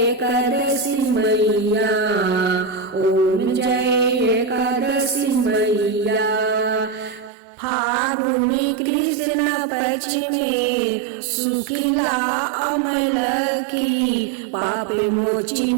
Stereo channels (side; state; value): left; drops out; at 7.3 s